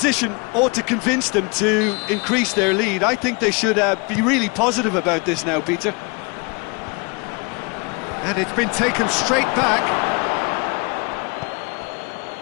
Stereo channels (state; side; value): quieter; right; 30.8 dB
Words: ought to convince them to increase their lead. I think they should be really positive about this now, Peter. And it's been taken straight back.